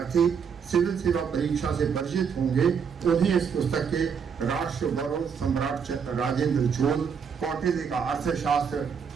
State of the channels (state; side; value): quieter; left; 6.6 dB